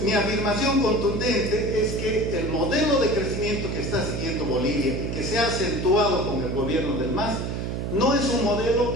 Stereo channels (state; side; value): noise; right; hum, 3 dB below the sound